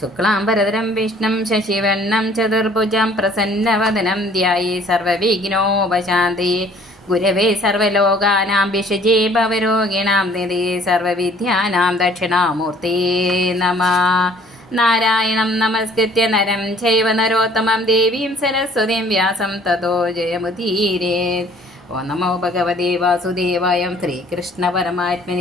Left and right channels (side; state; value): both; normal; correlation 0.56